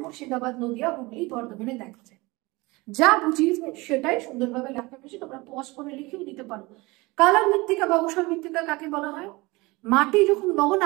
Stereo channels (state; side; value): quieter; left; 23.0 dB